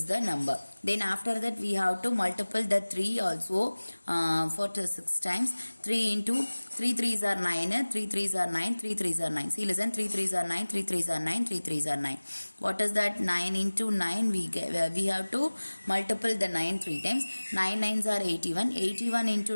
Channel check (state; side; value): inverted; both; correlation -1.00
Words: the number. Then after that we have to multiply the 3 also for 6 times. 3 into 3 3s are 9, 3 3s are 9, 3 3s are 9. See, listen, 3 3s are 9, 3 3s are 9, 3 3s are 9. What is that? 9 into 9, we have to multiply the 9 3 times. 9 9s are 81. 81 into